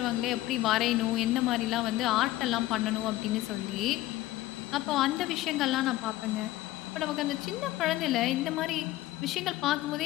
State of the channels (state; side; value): quieter; right; 16.2 dB